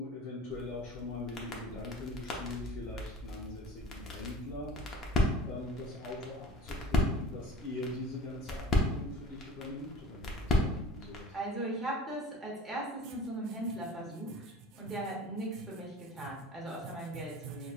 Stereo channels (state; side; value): normal; both; correlation 0.46